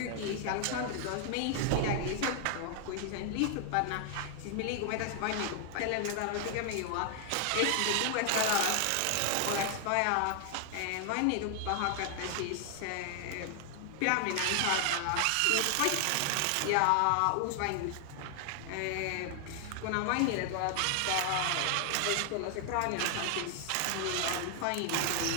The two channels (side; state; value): both; different; correlation 0.00